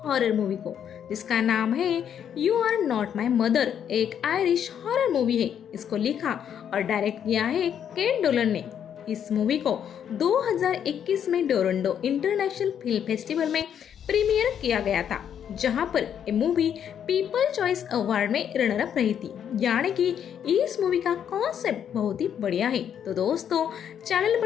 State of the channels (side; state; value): right; quieter; 8.8 dB